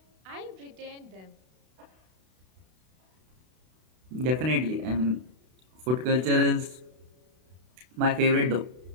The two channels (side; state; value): left; late; 32 ms